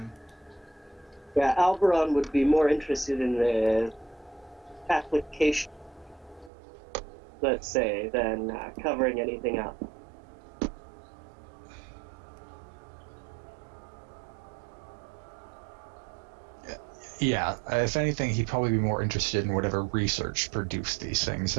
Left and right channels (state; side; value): drops out; left; at 6.5 s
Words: Yeah, Alberon would be more interested in the application, let's say, than covering anything up. Yeah, if anything, he'd probably be more interested in whatever research produced these things